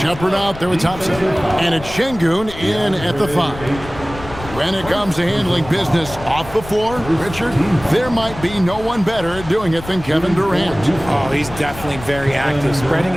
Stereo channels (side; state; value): left; noise; rumble, 14 dB below the sound